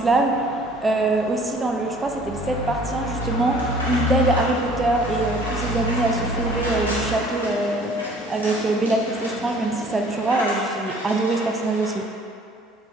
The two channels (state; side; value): normal; both; correlation 0.53